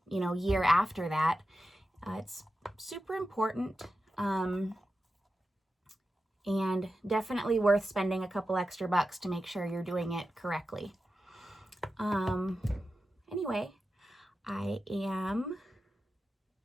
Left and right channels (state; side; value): normal; both; correlation 0.92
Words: year after that, it's super important. And definitely worth spending a couple extra bucks to make sure you're doing it correctly. Anyway, I am